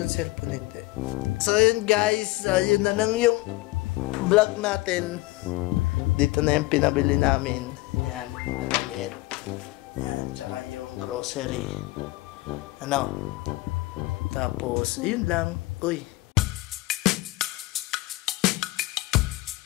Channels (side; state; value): right; quieter; 20.2 dB